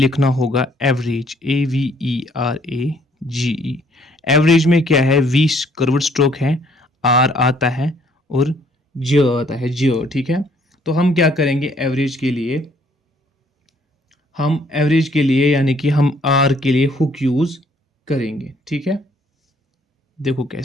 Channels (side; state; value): both; normal; correlation 0.63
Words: होगा एवरेज, AVERAGE, एवरेज में क्या है, वी कर्व्ड स्ट्रोक है, आर आता है और ज आता है, ज। ठीक है, तो हम क्या करेंगे एवरेज के लिए, यानी कि हम आर के लिए हुक यूज करेंगे। ठीक है, देखो